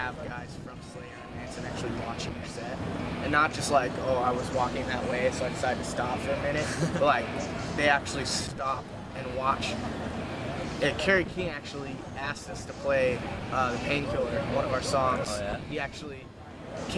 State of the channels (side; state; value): both; identical; correlation 1.00